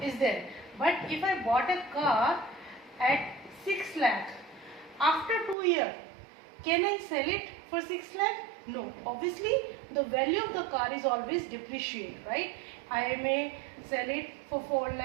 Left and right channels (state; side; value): drops out; left; at 5.6 s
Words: is there. But if I bought a car at 6 lakh, after 2 years, can I sell it for 6 lakh? No. Obviously, the value of the car is always depreciate, right? I may sell it for 4